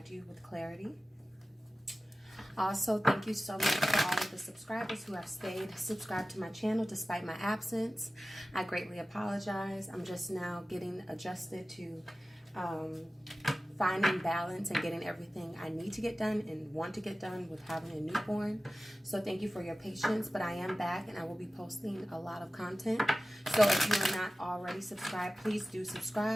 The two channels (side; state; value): both; normal; correlation 0.95